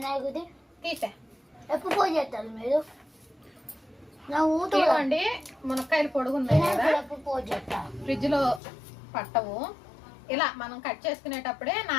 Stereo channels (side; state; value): right; drops out; at 8.6 s